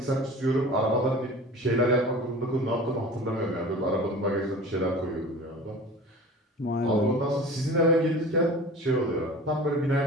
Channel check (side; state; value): both; normal; correlation 0.39